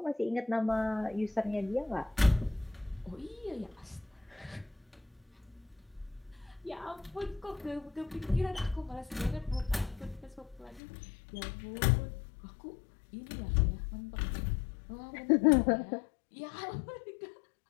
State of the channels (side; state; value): right; drops out; at 10.8 s